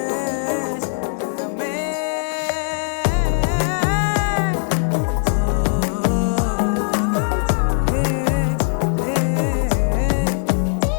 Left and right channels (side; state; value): right; silent; digital silence